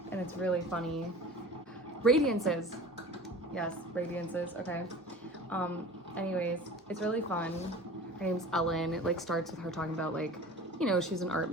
and it's really funny. Radiances. Yes, radiances. Okay. Anyways, it's really fun. Her name's Ellen. It like starts with her talking about like, you know, she's an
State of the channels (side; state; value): both; normal; correlation 0.39